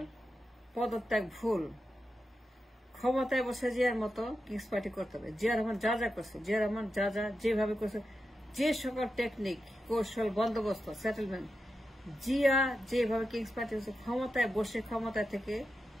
পদত্যাগ ভুল, ক্ষমতায় বসে জিয়ার মতো কিংস পার্টি করতে হবে। জিয়া রহমান যা যা করছে, জিয়া রহমান যা যা যেভাবে করছে, যে সকল টেকনিক, কৌশল, বন্দোবস্ত, সেটেলমেন্ট, জিয়া যেভাবে কিংস পার্টি করছে, ক্ষমতায় বসে ক্ষমতা থেকে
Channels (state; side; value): normal; both; correlation 0.89